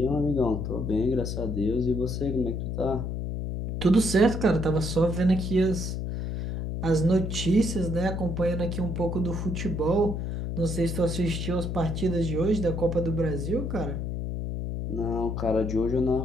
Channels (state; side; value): noise; left; hum, 3 dB below the sound